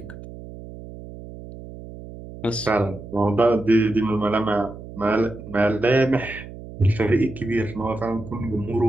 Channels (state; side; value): noise; right; hum, 14 dB below the sound